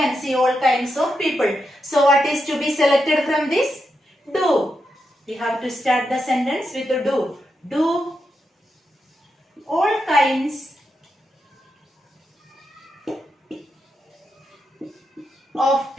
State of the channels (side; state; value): both; normal; correlation 0.85